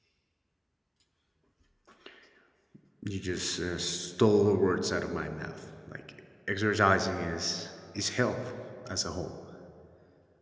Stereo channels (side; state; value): both; identical; correlation 1.00